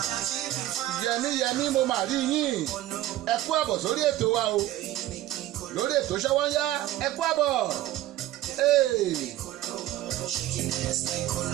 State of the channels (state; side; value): quieter; left; 14.6 dB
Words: Yẹmí mo máa rí yín. Ẹ kú àbọ̀ sórí ètò wa o. Lórí ètò Ṣọ́wọ́nyá. Ẹ kú àbọ̀. Shaking ass like